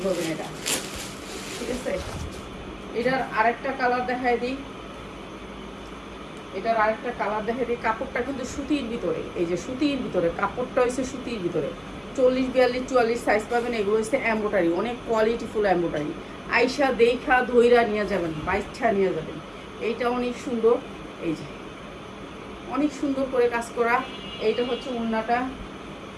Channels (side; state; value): both; identical; correlation 1.00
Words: করবেন এটা, ঠিক আছে। এটার আরেকটা কালার দেখাই দিই, এটার আরেকটা কালার দেখাই দিই। কাপড়টা কিন্তু সুতির ভিতরে, এই যে সুতির ভিতরে কাপড়টা হয়েছে সুতির ভিতরে, 40, 42, 44 সাইজ পাবেন। এগুলো হচ্ছে এমব্রয়ডারি, অনেক কোয়ালিটিফুল এমব্রয়ডারি। আইসা দেখা ধইরা নিয়ে যাবেন, বাইচ্ছা নিয়ে যাবেন। এইটা অনেক সুন্দর, এই যে অনেক সুন্দর করে কাজ করা। এইটা হচ্ছে ওড়নাটা।